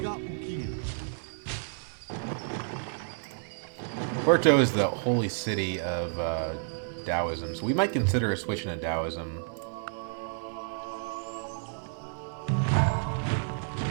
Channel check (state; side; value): silent; left; digital silence